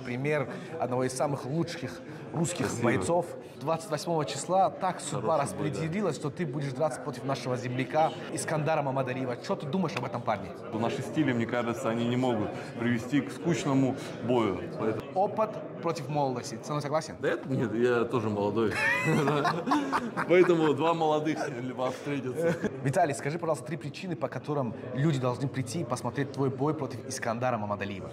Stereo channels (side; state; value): both; identical; correlation 1.00